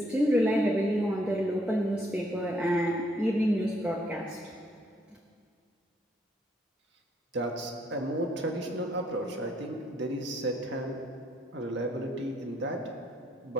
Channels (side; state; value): both; normal; correlation 0.70